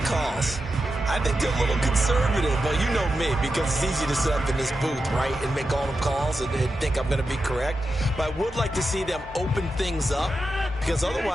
I think they're a little conservative. But you know me, because it's easy to sit up in this booth, right, and make all the calls and think I'm going to be correct. But I would like to see them open things up, because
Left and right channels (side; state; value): both; normal; correlation 0.89